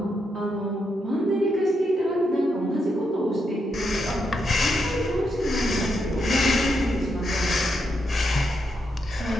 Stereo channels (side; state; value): both; normal; correlation 0.81